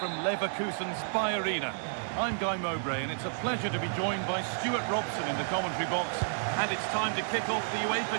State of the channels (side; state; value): left; silent; digital silence